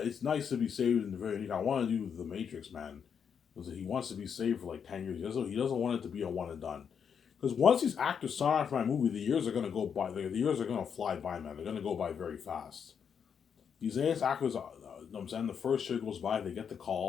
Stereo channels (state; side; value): quieter; right; 7.2 dB